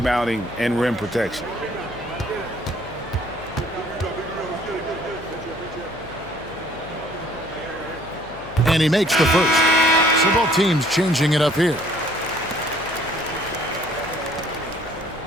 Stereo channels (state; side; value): noise; left; hum, 18 dB below the sound